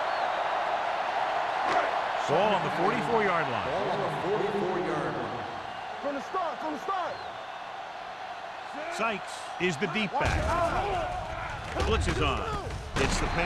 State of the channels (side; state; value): both; identical; correlation 1.00